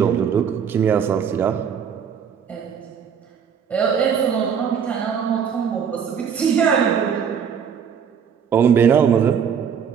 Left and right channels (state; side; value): quieter; left; 7.4 dB